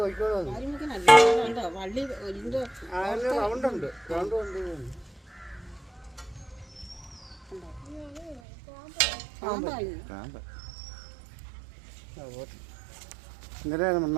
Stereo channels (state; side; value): drops out; left; at 8.4 s